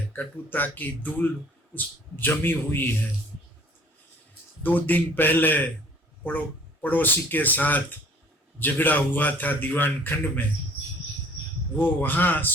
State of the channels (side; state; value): both; normal; correlation 0.53